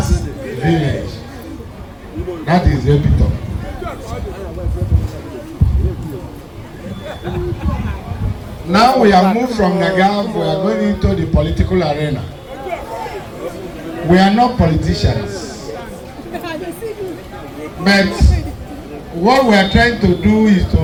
village. That is the epitome. Now we have moved from Nagav, we are going into the political arena. We are not politicians. But what we are trying to do is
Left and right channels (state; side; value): identical; both; correlation 1.00